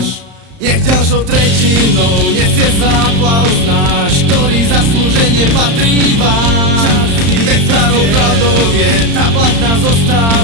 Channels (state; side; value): late; left; 35 ms